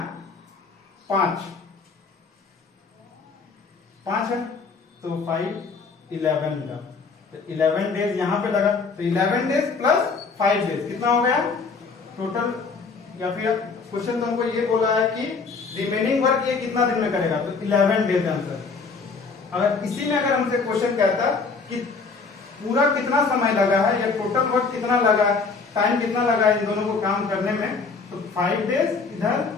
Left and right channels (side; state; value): right; quieter; 4.6 dB